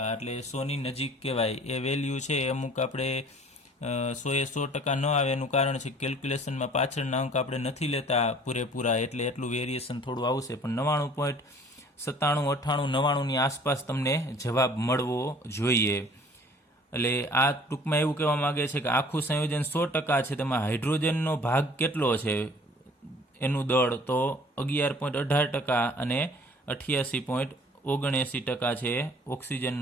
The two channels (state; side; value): normal; both; correlation 0.52